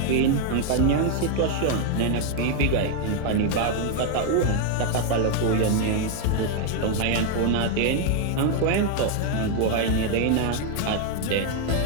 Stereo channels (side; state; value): both; different; correlation 0.00